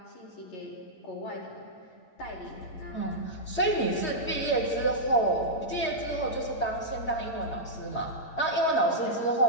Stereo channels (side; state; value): right; late; 8.7 ms